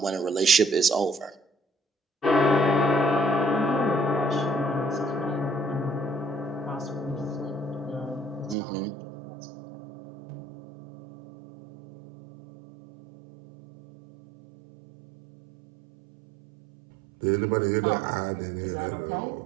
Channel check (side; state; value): left; drops out; at 8.6 s